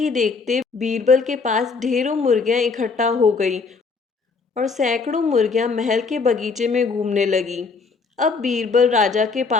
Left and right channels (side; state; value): right; quieter; 4.7 dB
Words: देखते बीरबल के पास ढेरों मुर्गियां इकट्ठा हो गई और सैकड़ों मुर्गियां महल के बगीचे में घूमने लगी। अब बीरबल राजा के